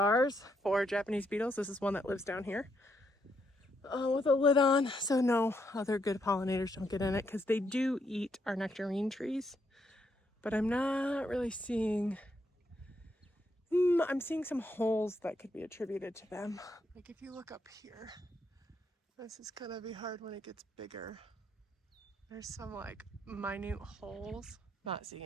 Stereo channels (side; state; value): both; normal; correlation 0.76